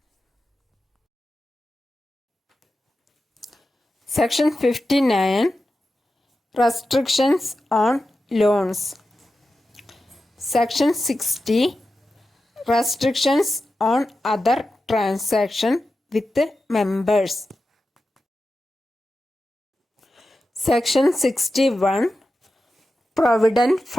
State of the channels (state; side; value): normal; both; correlation 0.92